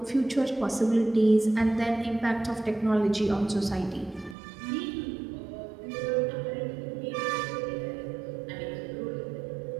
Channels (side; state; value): left; drops out; at 4.4 s